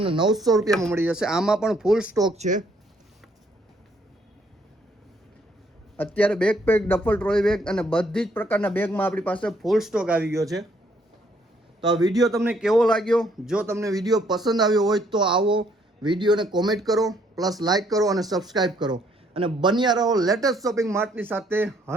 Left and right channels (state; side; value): normal; both; correlation 0.67